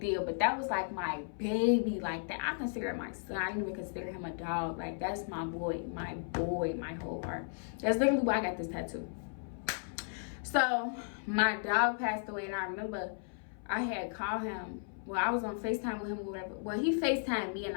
but that was like my baby, like that. I consider him my son. I didn't even consider him a dog. Like, that's my boy, my whole heart. That's literally why I got this tattoo. So my dog passed away, and I remember I had called him. Well, I was on FaceTime with him or whatever. Well, he FaceTimed me, and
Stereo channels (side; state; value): right; silent; 54 dB below the other